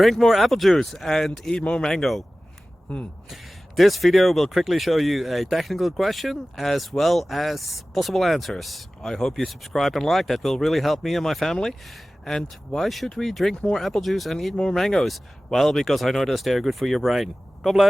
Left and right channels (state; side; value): normal; both; correlation 0.97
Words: more apple juice and eat more mango. This video will quickly show you a technical question as well as possible answers. I hope you subscribe and like, that will really help me and my family. And why should we drink more apple juice and eat more mangoes? Well, because I noticed they're good for your brain. God